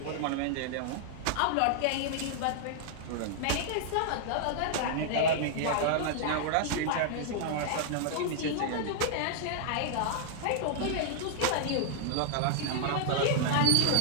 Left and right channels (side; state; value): both; different; correlation -0.01